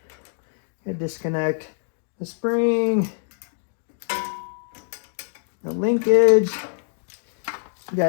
You disconnect the spring, the linkage. You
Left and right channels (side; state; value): right; silent; digital silence